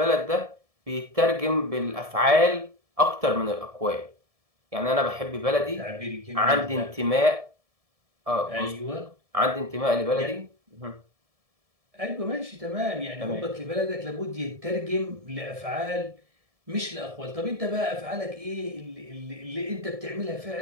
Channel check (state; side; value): late; left; 1.7 ms